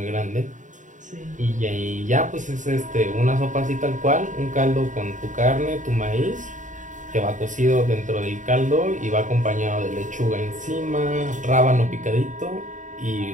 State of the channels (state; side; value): late; left; 0.36 ms